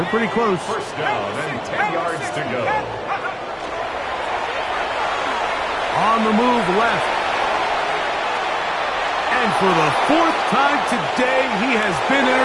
pretty close. First down and 10 yards to go. On the move left. And for the 4th time today, he has been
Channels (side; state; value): both; identical; correlation 1.00